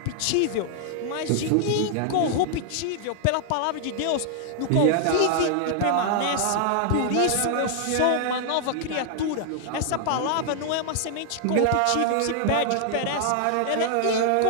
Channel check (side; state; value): both; different; correlation 0.00